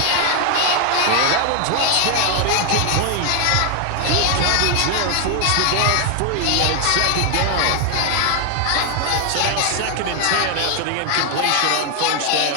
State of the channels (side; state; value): both; different; correlation 0.01